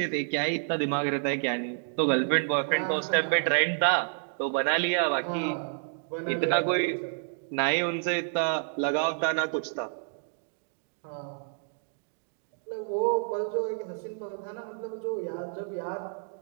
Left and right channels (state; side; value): silent; left; digital silence